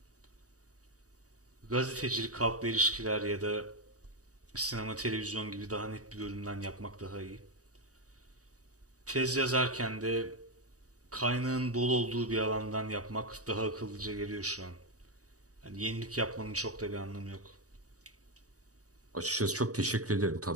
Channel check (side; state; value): left; late; 0.66 ms